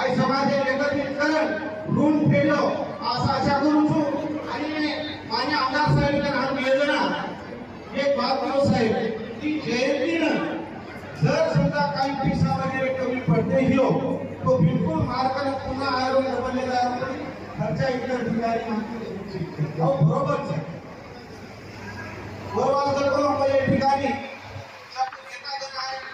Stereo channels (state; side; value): identical; both; correlation 1.00